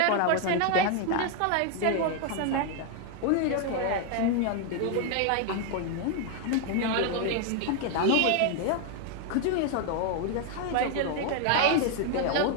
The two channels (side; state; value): both; different; correlation 0.00